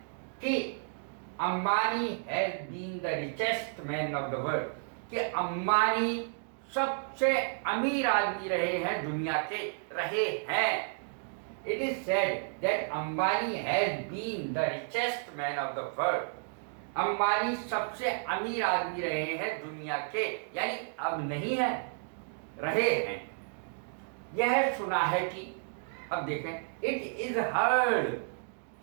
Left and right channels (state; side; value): silent; left; digital silence